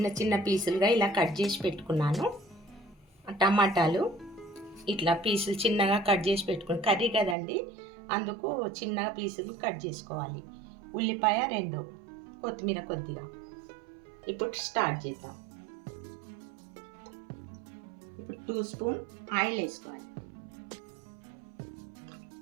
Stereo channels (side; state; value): left; drops out; at 7.4 s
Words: చిన్న పీసులుగా ఇలా కట్ చేసి పెట్టుకున్నాను. టమాటాలు ఇట్లా పీసులు చిన్నగా కట్ చేసి పెట్టుకుని, కర్రీ కదండి అందుకు చిన్నగా పీసులు కట్ చేసుకోవాలి. ఉల్లిపాయ 2, కొత్తిమీర కొద్దిగా. ఇప్పుడు స్టార్ట్ చేద్దాం. ఇప్పుడు 2 స్పూన్ ఆయిల్ వేసుకోవాలి.